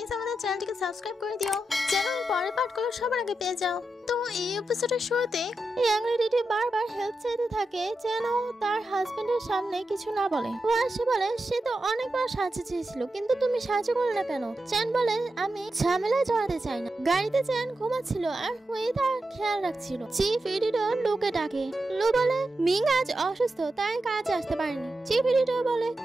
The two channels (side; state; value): both; normal; correlation 0.89